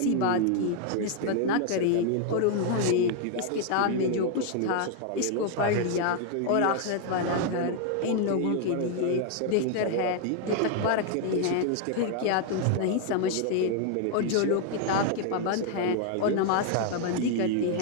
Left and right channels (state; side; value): different; both; correlation 0.00